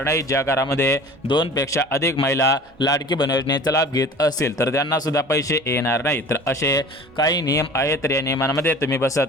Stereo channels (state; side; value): normal; both; correlation 0.42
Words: नाहीत. ज्या घरामध्ये 2 पेक्षा अधिक महिला लाडकी बहीण योजनेचा लाभ घेत असतील तर त्यांना सुद्धा पैसे येणार नाहीत. तर असे काही नियम आहेत. तर या नियमांमध्ये तुम्ही